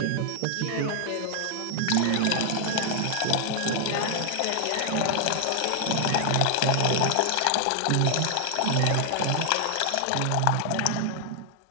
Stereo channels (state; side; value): different; both; correlation 0.00